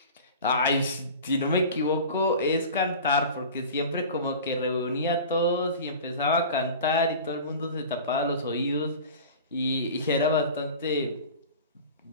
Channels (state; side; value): inverted; both; correlation -0.37